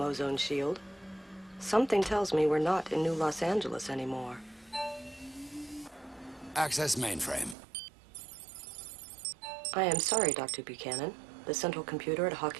shield. Something tells me we're not in New Los Angeles anymore. Access mainframe. I am sorry, Dr. Buchanan. The central computer at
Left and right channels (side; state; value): left; drops out; at 7.6 s